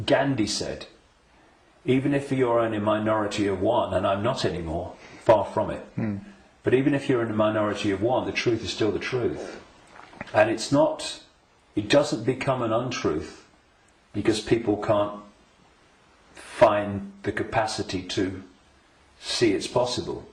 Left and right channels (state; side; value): identical; both; correlation 1.00